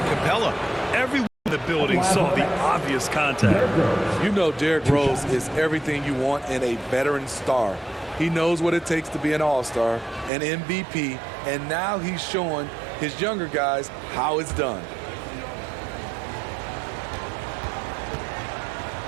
Capella. Everyone in the building saw the obvious contact. You know Derrick Rose is everything you want in a veteran star. He knows what it takes to be an all-star, an MVP, and now he's showing his younger guys how it's done.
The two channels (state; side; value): drops out; left; at 10.3 s